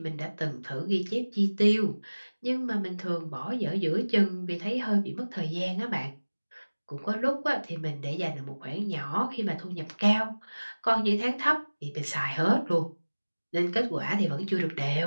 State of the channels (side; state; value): both; inverted; correlation -1.00